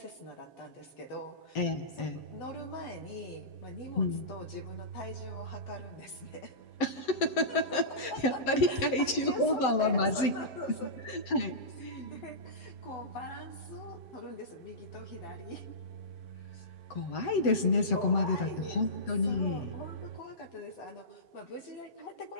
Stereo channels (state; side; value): late; right; 7.9 ms